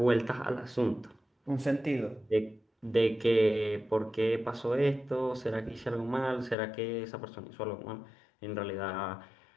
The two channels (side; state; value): right; drops out; at 6.6 s